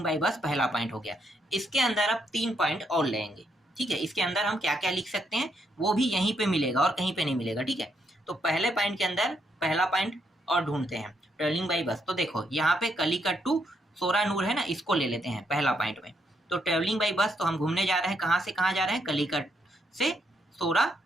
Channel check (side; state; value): both; normal; correlation 0.76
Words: बाई बस पहला पॉइंट हो गया। इसके अंदर अब 3 पॉइंट और लेंगे। ठीक है, इसके अंदर हम क्या क्या लिख सकते हैं वो भी यहीं पे मिलेगा और कहीं पे नहीं मिलेगा। ठीक है, तो पहले पॉइंट के अंदर पहला पॉइंट और ढूंढते हैं, ट्रेवलिंग बाई बस। तो देखो यहाँ पे कलिकट टू सोरानूर है ना, इसको ले लेते हैं पहला पॉइंट में। तो ट्रेवलिंग बाई बस, तो हम घूमने जा रहे हैं, कहाँ से कहाँ जा रहे हैं? कलिकट से